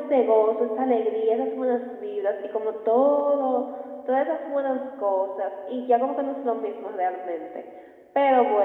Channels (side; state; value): both; identical; correlation 1.00